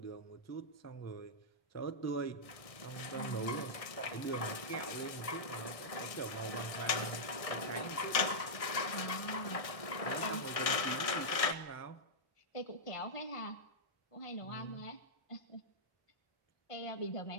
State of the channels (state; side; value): late; right; 1.6 ms